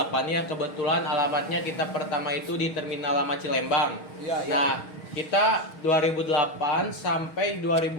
ya. Kebetulan alamatnya kita pertama itu di Terminal Lama Cilembang. Iya. Nah, kita 2008 sampai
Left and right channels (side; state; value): right; late; 6.4 ms